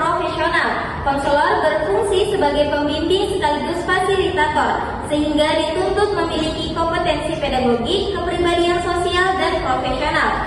Konselor berfungsi sebagai pembimbing sekaligus fasilitator, sehingga dituntut memiliki kompetensi pedagogik, kepribadian sosial dan profesional,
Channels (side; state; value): both; identical; correlation 1.00